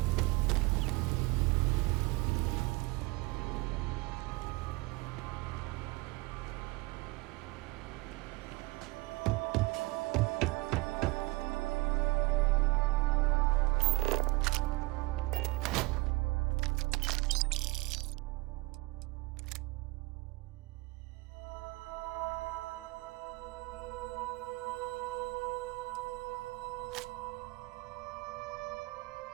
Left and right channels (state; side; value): quieter; left; 22.6 dB